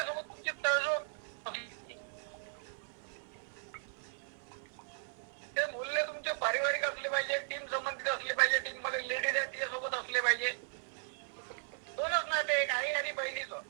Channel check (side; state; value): left; silent; 53 dB below the other